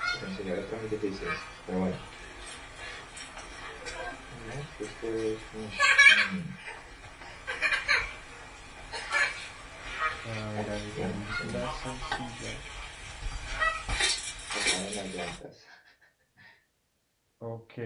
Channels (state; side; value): identical; both; correlation 1.00